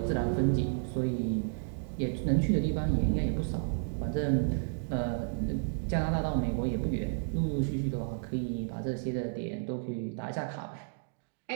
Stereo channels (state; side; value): silent; left; digital silence